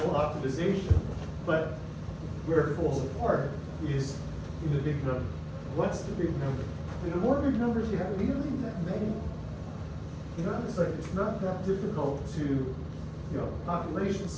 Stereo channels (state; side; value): identical; both; correlation 1.00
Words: optimization, but where it falls apart is in the big number. What's the big number? And the more big numbers you have, we don't need that many. You know, it's like, it's not that difficult to, population